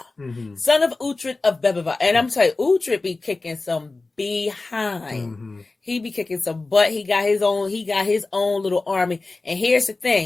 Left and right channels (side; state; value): right; quieter; 3.4 dB